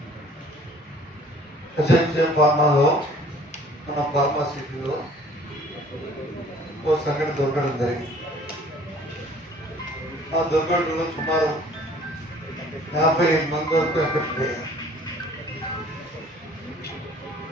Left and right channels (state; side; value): normal; both; correlation 0.53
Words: ఎస్ఎన్సీ ఫార్మాలో మన ఫార్మాసిటీలో ఓ సంఘటన దొరకడం జరిగింది. ఆ దొరకడంలో సుమారు 55 మంది వరకు ఎఫెక్ట్ అయ్యారు.